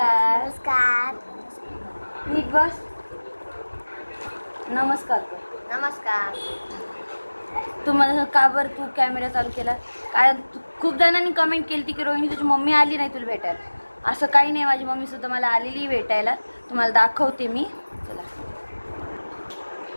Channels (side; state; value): both; inverted; correlation -1.00